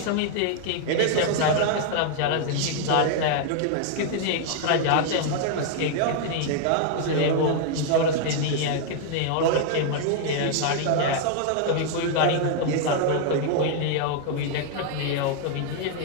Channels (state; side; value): different; both; correlation 0.00